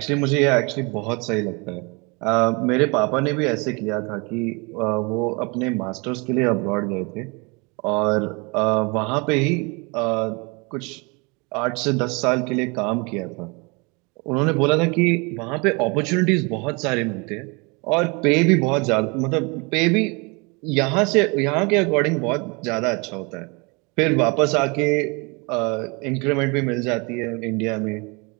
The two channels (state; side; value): quieter; left; 29.3 dB